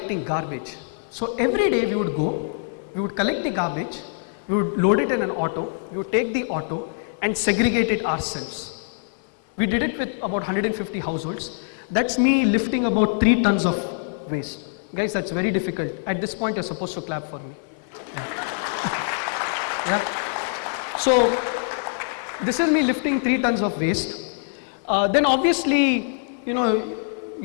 garbage. So every day we would go, we would collect the garbage, we would load it in an auto, we would take the auto and segregate it ourselves. We did it with about 150 households. That's me lifting about 3 tons of waste. Guys, that's very difficult. At this point, you're supposed to clap for me. Yeah. So this is me lifting 3 tons of waste. Then obviously, you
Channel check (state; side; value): silent; right; 63 dB below the other